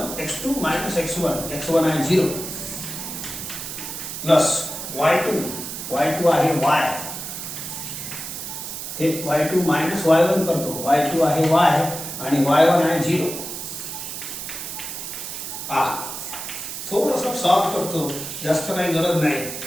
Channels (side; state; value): right; noise; hiss, 7 dB below the sound